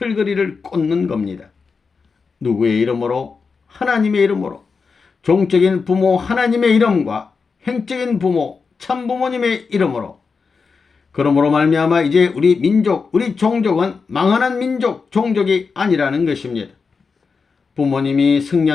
꽂는 겁니다. 누구의 이름으로? 하나님의 이름으로. 종적인 부모 하나님의 이름과 행적인 부모 참부모님의 이름으로. 그러므로 말미암아 이제 우리 민족, 우리 종족은 망하는 민족, 종족이 아니라는 것입니다. 부모님이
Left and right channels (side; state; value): right; quieter; 5.0 dB